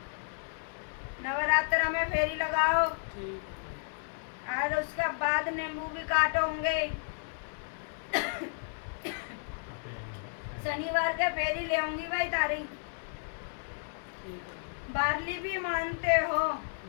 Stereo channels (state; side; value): silent; right; 56 dB below the other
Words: नवरात्र में फेरी लगाओ। ठीक है। और उसके बाद नींबू भी काटोगे। शनिवार के फेरी ले आऊंगी भाई तारी। ठीक है। बारली भी मानते हो?